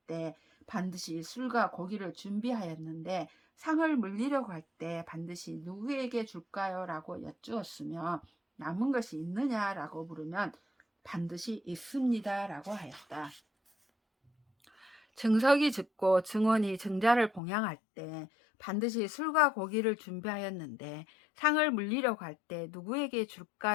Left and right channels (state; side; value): drops out; right; at 17.4 s